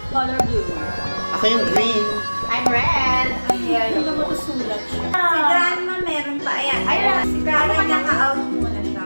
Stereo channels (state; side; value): inverted; both; correlation -1.00